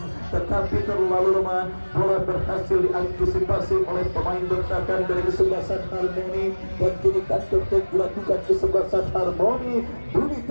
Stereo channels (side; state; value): both; inverted; correlation -1.00